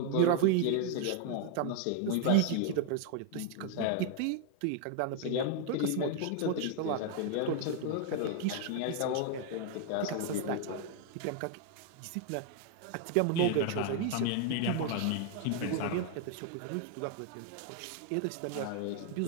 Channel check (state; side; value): different; both; correlation 0.00